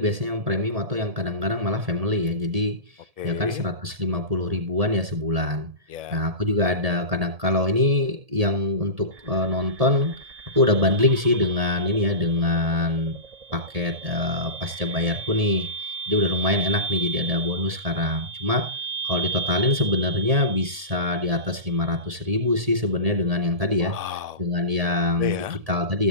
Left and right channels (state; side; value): late; left; 1.7 ms